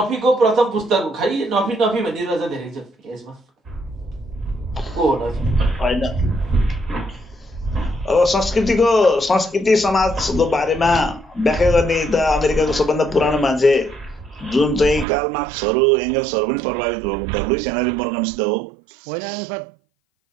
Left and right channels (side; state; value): left; drops out; at 15.1 s